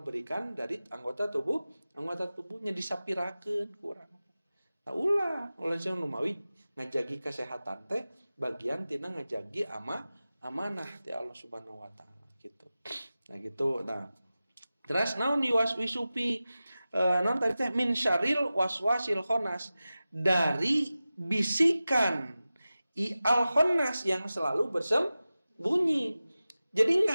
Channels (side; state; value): both; inverted; correlation -0.95